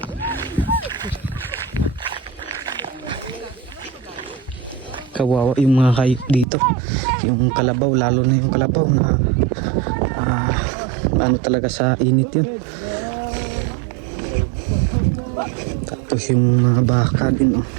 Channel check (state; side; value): drops out; left; at 6.5 s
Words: Kawawa yung mga hayop dito, yung kalabaw, lalo na yung kalabaw na ano talaga sa init yun. Tapos yung mga baka din, oh.